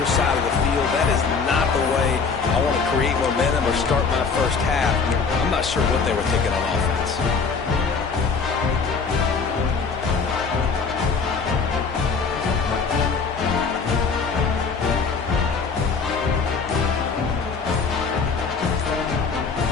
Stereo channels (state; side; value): quieter; right; 5.2 dB